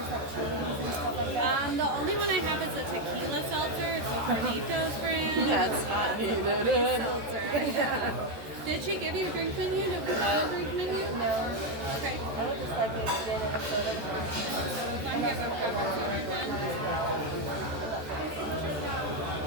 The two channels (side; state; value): left; late; 13 ms